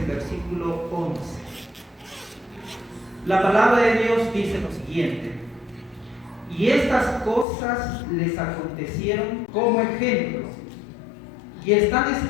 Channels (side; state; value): right; drops out; at 7.5 s